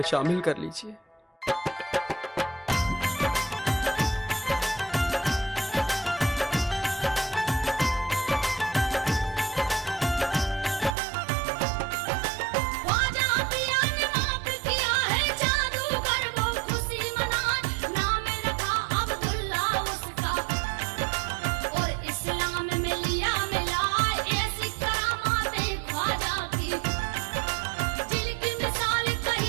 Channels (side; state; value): left; drops out; at 11.0 s